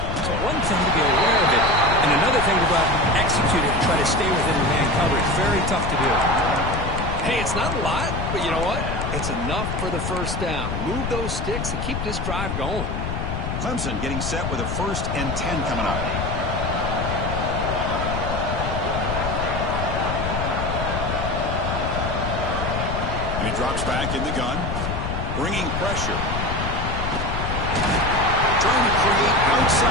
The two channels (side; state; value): left; noise; rumble, 3 dB below the sound